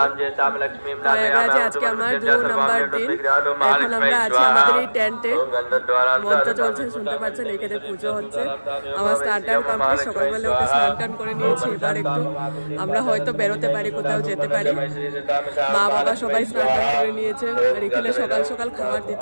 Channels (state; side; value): inverted; both; correlation -1.00